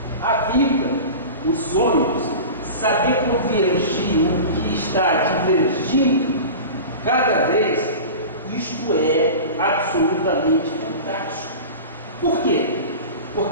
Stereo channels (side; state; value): both; inverted; correlation -0.33